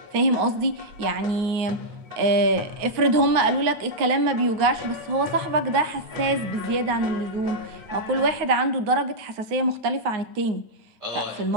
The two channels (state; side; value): late; left; 9.4 ms